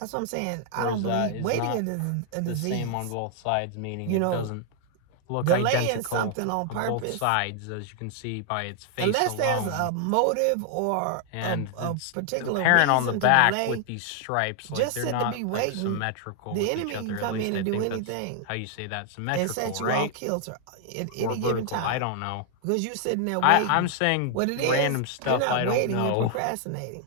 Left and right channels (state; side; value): different; both; correlation 0.00